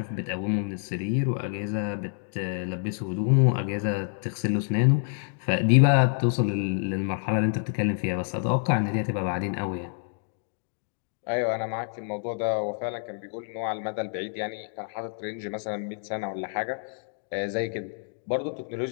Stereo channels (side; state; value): right; silent; digital silence